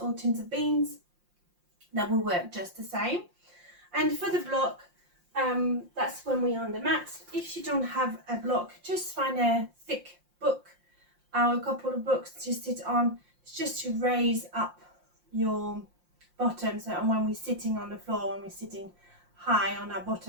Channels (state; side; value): late; left; 5.7 ms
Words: or tins of beans. That will work just the same. And for the block, that's when we're on the mat. If you don't have a block, just find a thick book or a couple of books to sit on. It's just to raise up your bottom, so when we're sitting on the floor, when we're sitting high on our